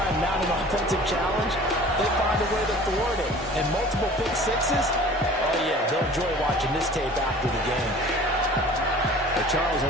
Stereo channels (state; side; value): normal; both; correlation 0.45